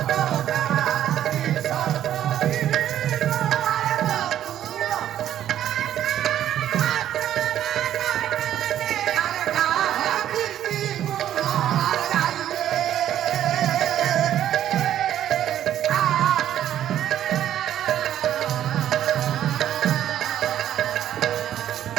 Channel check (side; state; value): left; quieter; 11.3 dB